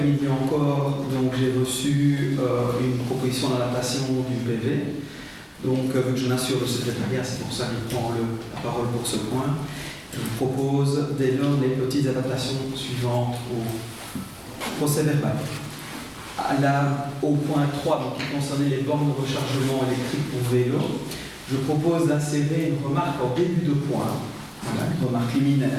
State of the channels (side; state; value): both; identical; correlation 1.00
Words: encore, j'ai reçu une proposition d'adaptation du PV. Donc, vu que je m'assure le secrétariat, c'est pour ça que je prends la parole pour ce point. Je vous propose dès lors les petites adaptations suivantes au procès verbal. Au point 3, qui concernait les bornes de rechargement électrique pour vélo, je propose d'insérer une remarque en début de point, une remarque liminaire,